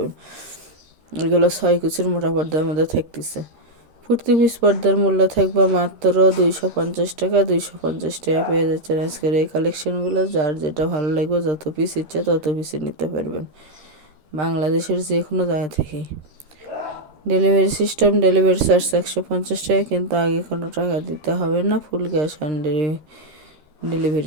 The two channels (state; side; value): late; left; 13 ms